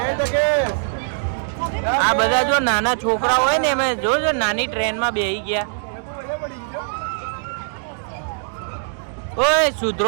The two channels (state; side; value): silent; left; digital silence